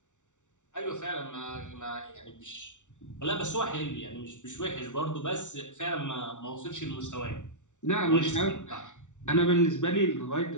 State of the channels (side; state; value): right; late; 0.86 ms